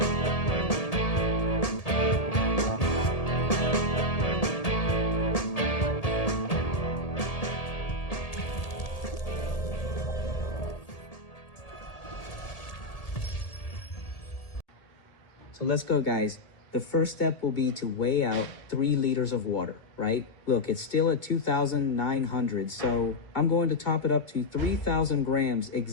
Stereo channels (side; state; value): right; late; 1.8 ms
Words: So let's go, guys. The first step will be to weigh out 3 liters of water, right? Look, it's still at 2,900, so I'm going to top it up to 3,000 grams